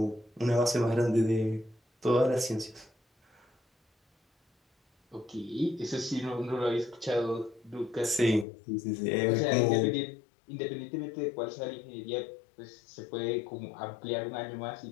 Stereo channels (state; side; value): drops out; right; at 8.5 s